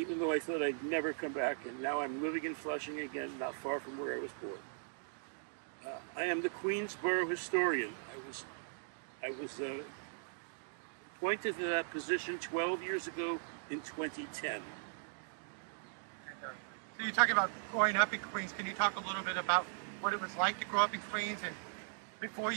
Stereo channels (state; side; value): silent; left; digital silence